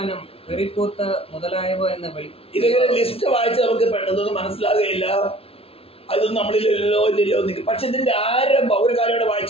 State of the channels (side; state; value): right; late; 0.28 ms